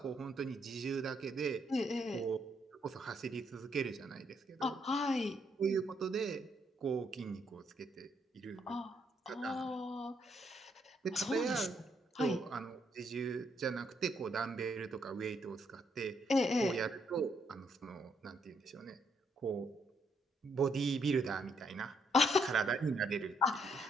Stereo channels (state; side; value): normal; both; correlation 0.73